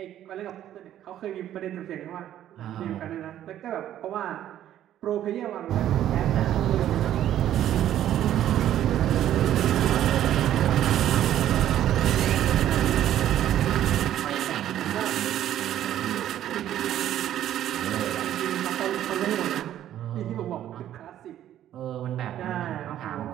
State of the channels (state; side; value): quieter; left; 11.8 dB